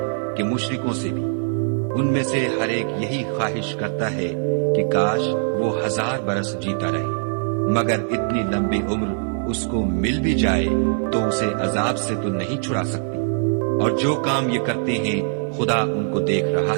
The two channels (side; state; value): left; silent; digital silence